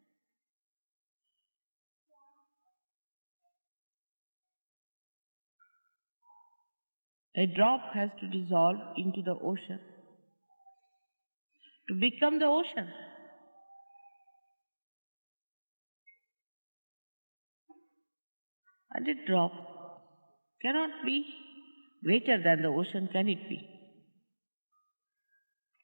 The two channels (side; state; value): both; inverted; correlation -1.00